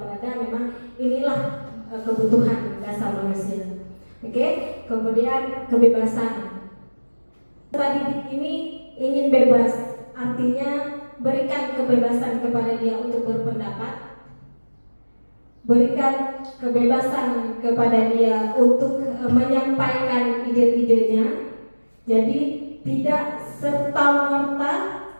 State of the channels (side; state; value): both; inverted; correlation -1.00